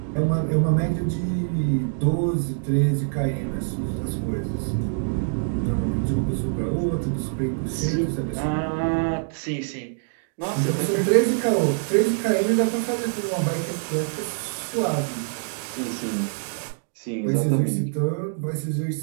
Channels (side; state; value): left; silent; digital silence